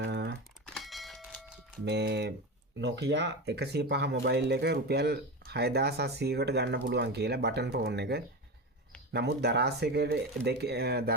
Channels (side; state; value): both; normal; correlation 0.21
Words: මේ Nokia 105 මොබයිල් එක රුපියල් 6700කට ගන්න පුළුවන් කියලා බටන් ෆෝන් එක. නමුත් දරාස්